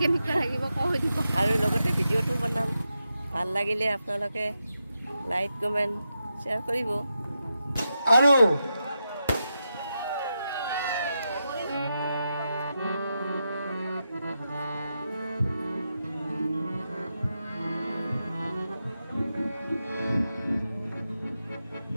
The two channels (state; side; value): inverted; both; correlation -0.87